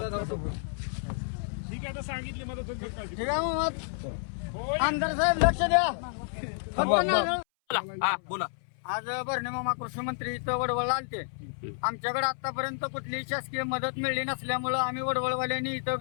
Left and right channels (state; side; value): silent; right; 58 dB below the other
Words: ठीक आहे, आता सांगितली मदत होईल. ठीक आहे मग आमदार साहेब लक्ष द्या. बोला. आज भरणे मामा कृषी मंत्री इथं वडवळला आलते. आमच्याकडे आतापर्यंत कुठलीही शासकीय मदत मिळली नसल्यामुळं आम्ही वडवळवाल्यांनी इथं